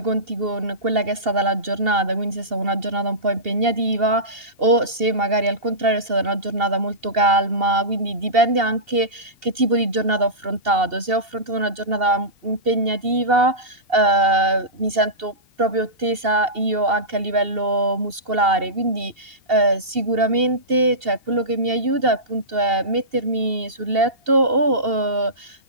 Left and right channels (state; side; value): late; left; 2.7 ms